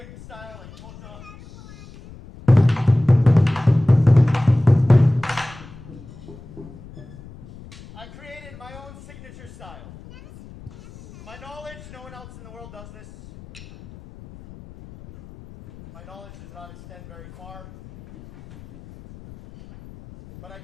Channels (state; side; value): noise; left; rumble, 19 dB below the sound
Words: style, like koto. I created my own signature style. To my knowledge, no one else in the world does this. My knowledge does not extend very far. But I